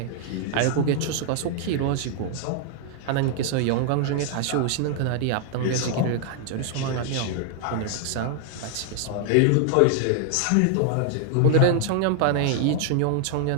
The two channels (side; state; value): both; different; correlation 0.00